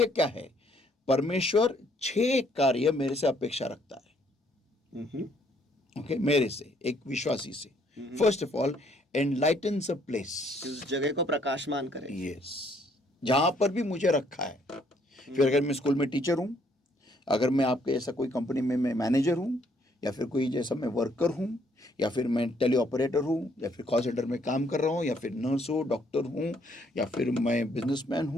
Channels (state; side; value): normal; both; correlation 0.67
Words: क्या है? परमेश्वर 6 कार्य मेरे से अपेक्षा रखता है। ओके, मेरे से, एक विश्वासी से। First of all, enlightens a place. उस जगह को प्रकाशमान करे। यस, जहां पर भी मुझे रखा है। फिर अगर मैं स्कूल में टीचर हूं, अगर मैं आपके ऐसा कोई कंपनी में मैं मैनेजर हूं, या फिर कोई जैसा मैं वर्कर हूं, या फिर मैं टेली ऑपरेटर हूं, या फिर कॉल सेंटर में काम कर रहा हूं, या फिर नर्स हूं, डॉक्टर हूं, या फिर मैं बिजनेसमैन